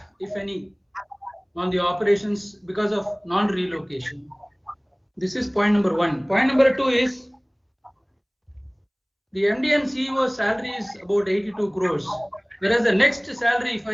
if any, on the operations because of non-relocation. This is point number one. Point number two is the MD and CEO salary is about 82 crores, whereas the next salary, if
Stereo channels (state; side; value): identical; both; correlation 1.00